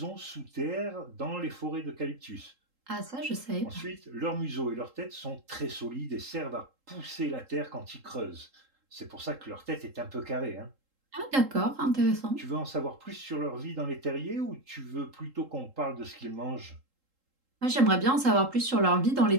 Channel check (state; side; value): late; left; 3.8 ms